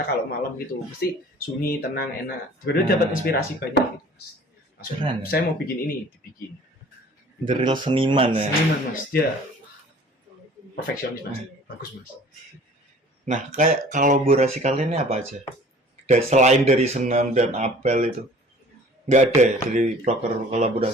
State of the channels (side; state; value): both; normal; correlation 0.49